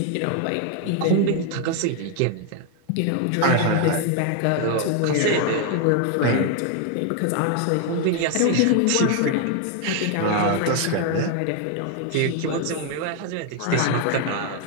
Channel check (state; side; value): different; both; correlation 0.01